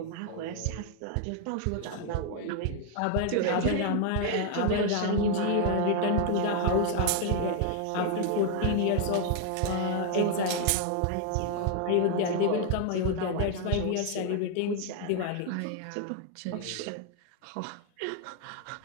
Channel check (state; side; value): different; both; correlation 0.00